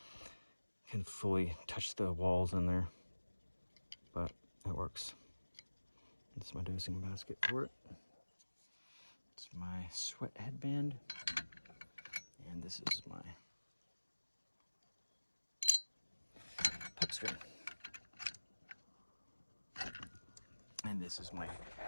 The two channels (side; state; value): both; inverted; correlation -1.00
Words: fully touch the walls in there, but it works. This is my dosing basket for it. It's my sweat headband, and this is my puck string. And this is my